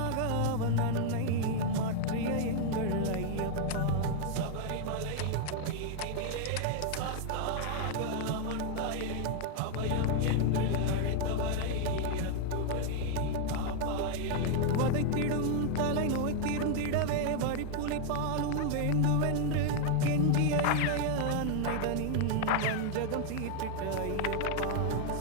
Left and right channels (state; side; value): different; both; correlation 0.00